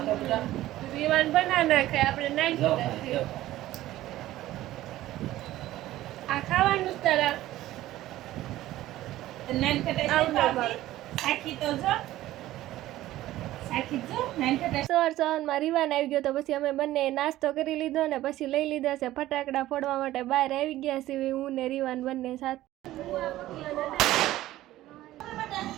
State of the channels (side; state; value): left; quieter; 15.2 dB